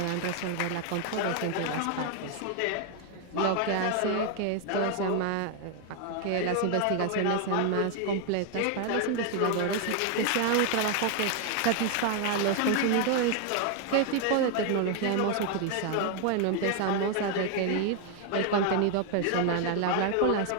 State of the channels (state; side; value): different; both; correlation 0.00